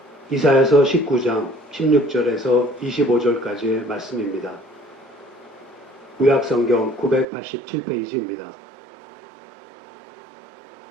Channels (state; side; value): drops out; left; at 7.2 s